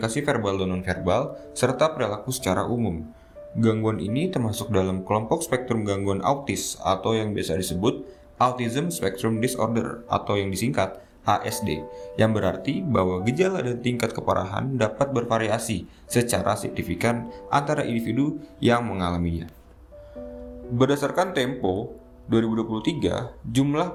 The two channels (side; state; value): both; identical; correlation 1.00